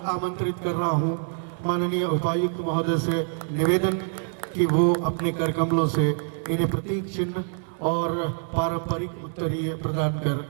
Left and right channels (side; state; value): left; silent; 60 dB below the other